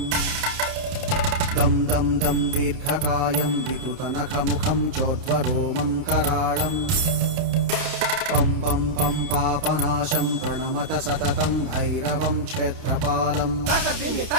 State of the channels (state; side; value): late; left; 30 ms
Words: दं दं दं दीर्घकायं विकृतनखमुखं चोर्ध्वरोमं कराळं पं पं पं पापनाशं प्रणमत सततं भैरवं क्षेत्रपालम्